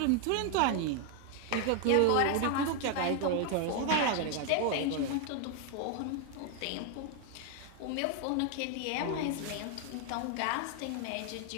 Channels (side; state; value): both; different; correlation 0.01